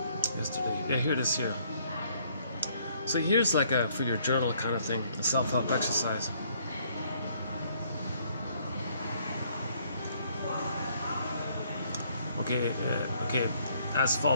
yesterday. Yeah, here it is here. So here's like a for your journal kind of thing, a self-help exercise. Okay, as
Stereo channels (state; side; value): inverted; both; correlation -0.65